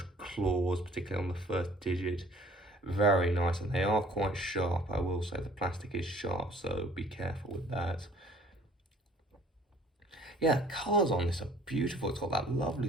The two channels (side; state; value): both; normal; correlation 0.54